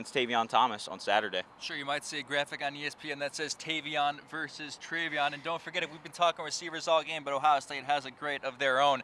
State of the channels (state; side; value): identical; both; correlation 1.00